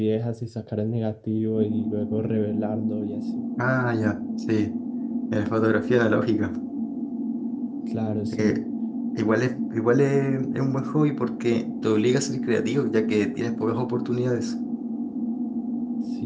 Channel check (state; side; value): identical; both; correlation 1.00